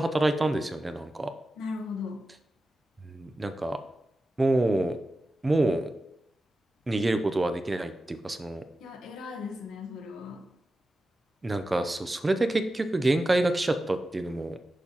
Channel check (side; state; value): both; normal; correlation 0.93